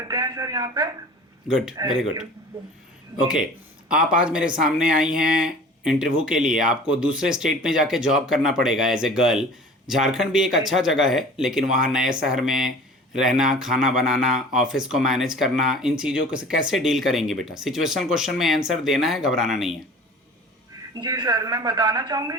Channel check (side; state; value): both; normal; correlation 0.43